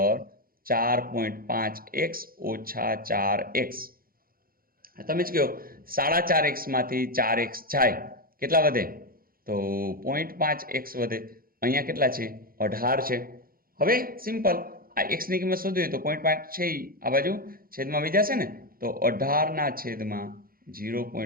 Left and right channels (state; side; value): late; left; 0.42 ms